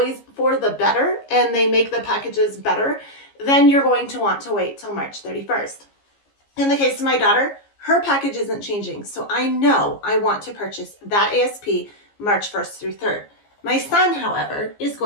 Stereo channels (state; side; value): late; right; 15 ms